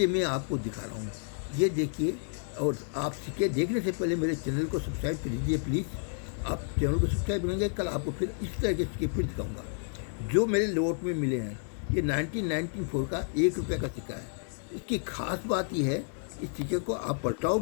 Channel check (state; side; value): silent; right; 57 dB below the other